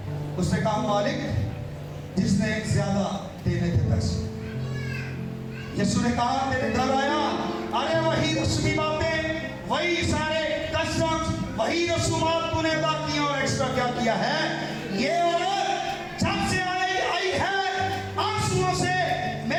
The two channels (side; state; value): both; identical; correlation 1.00